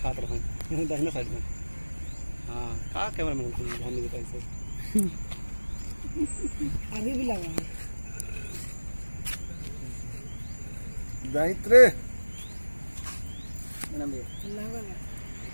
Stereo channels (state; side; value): inverted; both; correlation -1.00